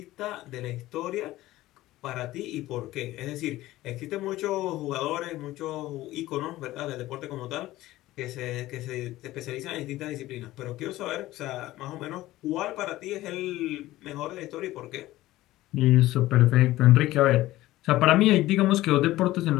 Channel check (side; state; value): right; quieter; 16.5 dB